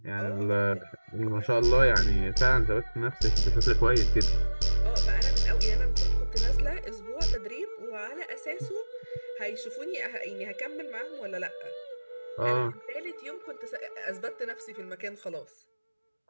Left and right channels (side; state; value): both; inverted; correlation -1.00